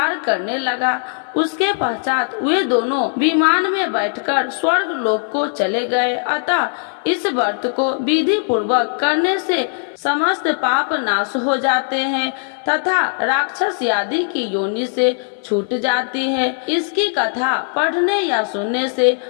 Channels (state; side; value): silent; right; 56 dB below the other